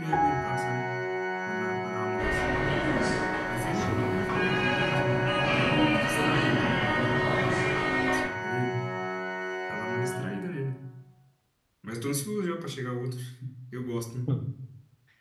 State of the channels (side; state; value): both; identical; correlation 1.00